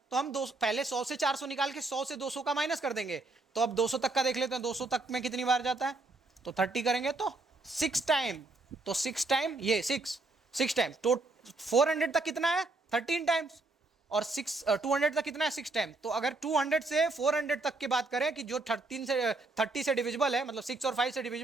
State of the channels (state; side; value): quieter; left; 3.3 dB